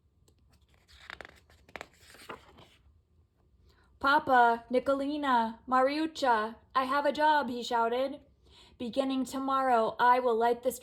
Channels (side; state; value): both; identical; correlation 1.00